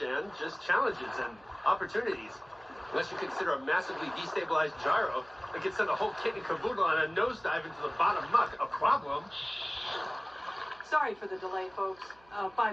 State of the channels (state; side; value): noise; right; hum, 28 dB below the sound